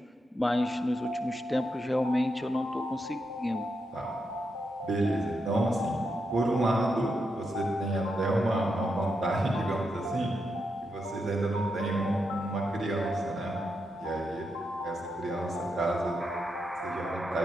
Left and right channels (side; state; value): both; normal; correlation 0.84